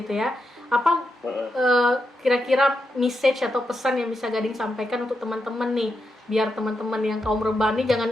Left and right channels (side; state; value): both; normal; correlation 0.85